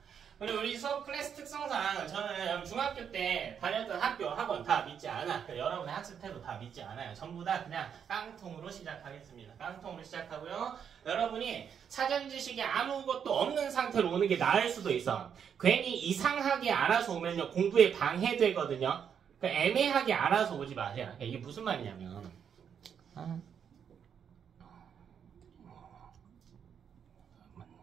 그리고 우리 수업 클래스 특성상 저는 중학교 때 다녔던 학교, 학원 다 믿지 않아. 여러분의 학습 태도 다 믿지 않아요. 전부 다 그냥 깡통으로 시작하겠습니다. 깡통으로 시작하고요. 여러분이 사전 지식이 아무것도 없는 상태로 오는 게 나을 수도 있어. 괜히 이상하게 알아서 오면요, 공부에 방해되거든요. 그러니까 애매하게 알아서 오지 마세요. 그러니까 이게 무슨 말이냐면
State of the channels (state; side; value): quieter; left; 7.8 dB